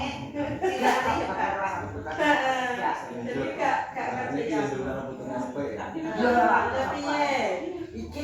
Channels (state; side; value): identical; both; correlation 1.00